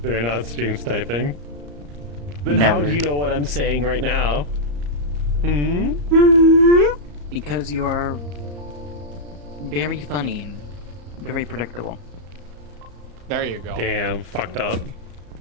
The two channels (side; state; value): left; late; 34 ms